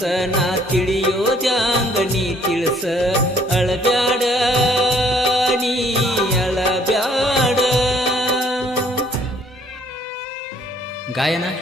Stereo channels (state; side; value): normal; both; correlation 0.61